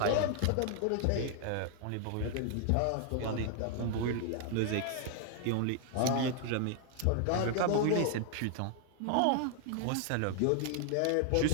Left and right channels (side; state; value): both; different; correlation 0.00